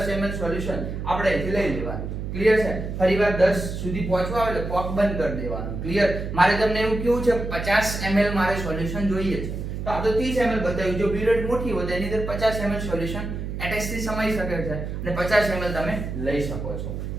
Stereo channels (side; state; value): right; noise; hum, 5 dB below the sound